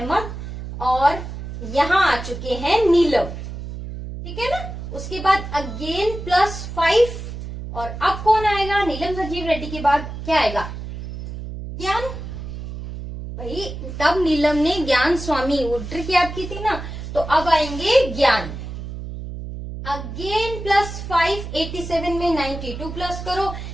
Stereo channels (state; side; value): noise; right; hum, 8 dB below the sound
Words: और यहाँ आ चुके हैं नीलम, ठीक है ना। उसके बाद अगेन +5, और अब कौन आएगा, नीलम संजीव रेड्डी के बाद क्या आएगा, ज्ञान। भाई तब नीलम ने ज्ञान स्वामी वो ट्रिक याद की थी ना, तो अब आएंगे ज्ञान। अगेन +5 87 में 92 प्लस करो।